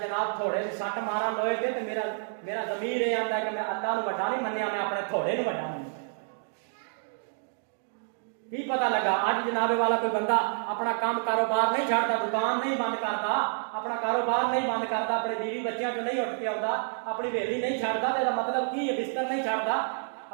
جناب تھوڑے سے سٹ مارا لوہے تے تو میرا ضمیر یہ آتا ہے کہ میں اللہ نو بڑا نہیں منیا، میں اپنے تھوڑے نو بڑا منیا۔ کی پتہ لگا اج جناب والا کوئی بندہ اپنا کام کاروبار نہیں چھڑتا، دکان نہیں بند کرتا، اپنا کاروبار نہیں بند کرتا، اپنے بیوی بچیاں جو نہیں اٹھ کے آتا، اپنی ویلی نہیں چھڑتا، تو مطلب کی ہے؟ بستر نہیں چھڑتا،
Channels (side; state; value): left; silent; digital silence